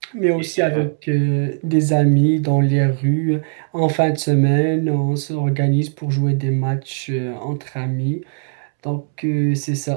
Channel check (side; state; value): left; silent; 66 dB below the other